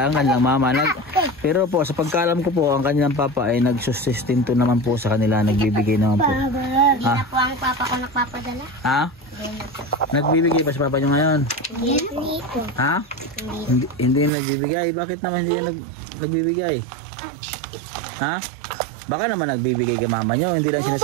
ang kanilang mama. Pero po sa pagkaalam ko po, ang kanilang papa ay nagsusustento naman po sa kanila. Nagbibigay naman po. Hindi na po ang papa ko nagpapadala. Ha? Nagbibigay pa sa papa nyo ngayon? Hindi nito. Ha? Hindi nagbibigay? Bakit naman hindi nagbibigay? Ha? Baka naman nagbibigay kay mama nyo, hindi lang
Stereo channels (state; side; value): drops out; left; at 14.3 s